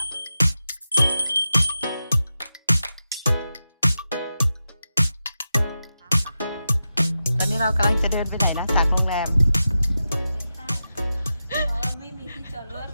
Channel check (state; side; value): inverted; both; correlation -0.91